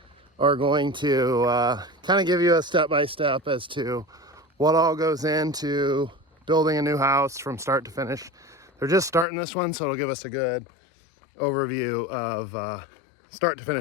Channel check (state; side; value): drops out; right; at 9.2 s